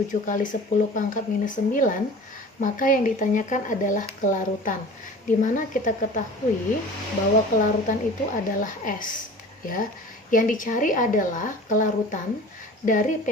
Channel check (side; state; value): both; normal; correlation 0.41